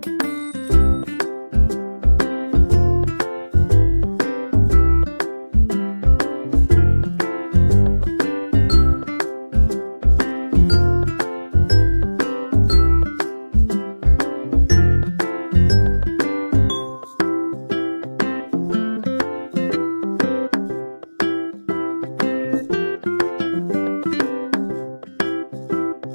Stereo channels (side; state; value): both; inverted; correlation -1.00